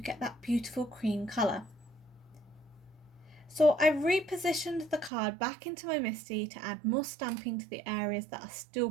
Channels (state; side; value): drops out; left; at 5.1 s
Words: that beautiful cream colour. So I've repositioned the card back into my MISTI to add more stamping to the areas that are still